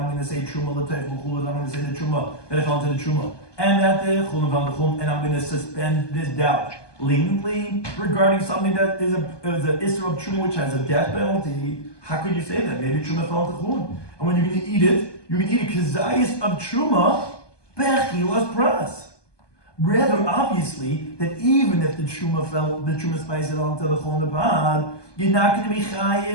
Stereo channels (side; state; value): right; late; 1.2 ms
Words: going to say truma l'tech l'chulin, I'm going to say the truma that it fell into the truma, and that the chulin fell into the chulin, and I'm going to suspend this doubt leniently regarding something that is an isser of truma which has a death penalty. How could you say that? Maybe truma fell into chulin, and when you're going to eat it, you're going to eat a kazayis of truma bechilas pras. Rather obviously that even if the truma spice it onto the chulin pod, you're not going to be